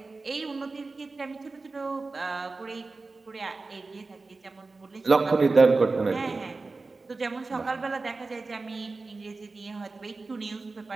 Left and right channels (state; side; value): quieter; left; 3.7 dB